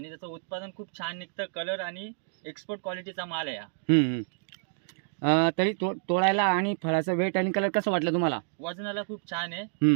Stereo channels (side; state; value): left; silent; digital silence